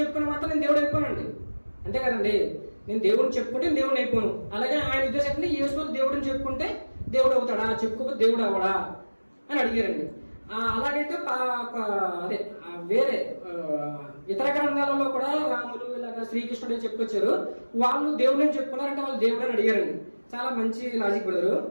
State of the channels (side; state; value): both; inverted; correlation -1.00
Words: చెప్పుకున్న మాత్రం నేను దేవుడు అయిపోనండి, అంతే కదండి. నేను దేవుడిని చెప్పుకుంటే దేవుడిని అయిపోను. అలాగే ఆయన ఉద్దేశం యేసు వారు దేవుడిని చెప్పుకుంటే దేవుడు అవుతాడా, చెప్పుకోకపోతే దేవుడు అవ్వడా అని అడిగారండి. అలాగైతే అదే వేరే ఇతర గ్రంథాలలో కూడా రాములు ఇలాగ శ్రీకృష్ణుడు చెప్పుకొచ్చారు, వాళ్ళు దేవుడిని చెప్పుకున్నారంటే వాళ్ళు దేవుడు అని అడిగారండి. చాలా మంచి లాజిక్ బ్రదరు.